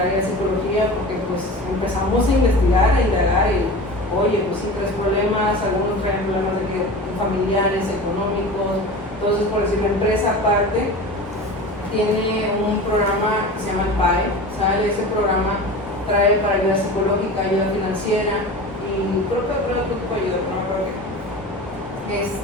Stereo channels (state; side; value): normal; both; correlation 0.33